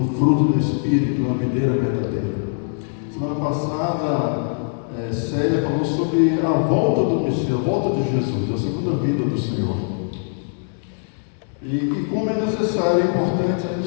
fruto do Espírito, uma videira verdadeira. Semana passada, Célia falou sobre a volta do Messias, a volta de Jesus, a segunda vinda do Senhor. E como é necessário, é importante a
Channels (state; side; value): silent; right; digital silence